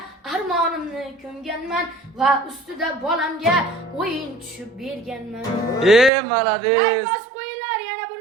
armonimni ko'mganman va ustida bolamga o'yin tushib berganman. Malades. Bas qo'yinglar yana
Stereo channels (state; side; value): drops out; left; at 6.1 s